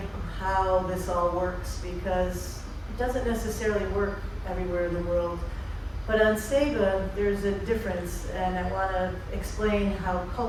how this all works, because it doesn't necessarily work everywhere in the world. But on Saba, there's a difference, and I want to explain how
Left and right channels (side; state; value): both; identical; correlation 1.00